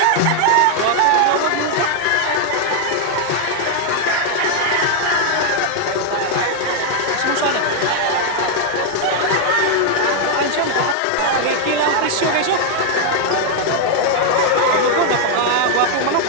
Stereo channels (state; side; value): different; both; correlation 0.00